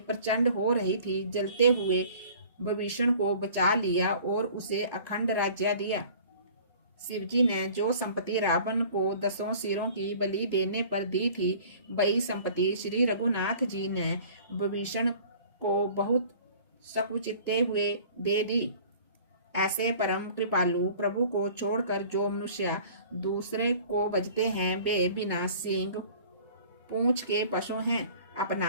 हो रही थी, जलते हुए विभीषण को बचा लिया और उसे अखंड राज्य दिया। शिवजी ने जो संपत्ति रावण को 10 सिरों की बलि देने पर दी थी, वही संपत्ति श्री रघुनाथ जी ने विभीषण को बहुत सकुचिते हुए दे दी। ऐसे परम कृपालु प्रभु को छोड़कर जो मनुष्य दूसरे को भजते हैं, वे बिना सींग पूंछ के पशु हैं।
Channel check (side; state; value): both; inverted; correlation -0.48